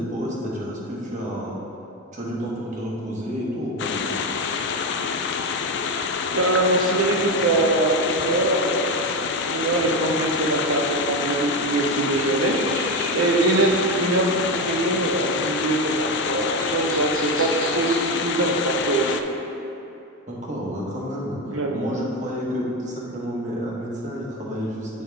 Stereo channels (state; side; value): normal; both; correlation 0.14